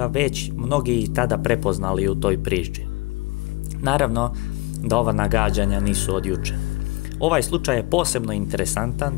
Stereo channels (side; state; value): right; quieter; 22.6 dB